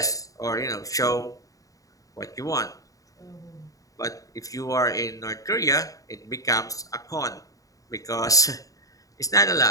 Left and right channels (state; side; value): late; right; 0.17 ms